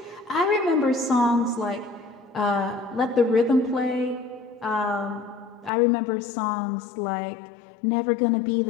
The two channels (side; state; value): right; drops out; at 5.7 s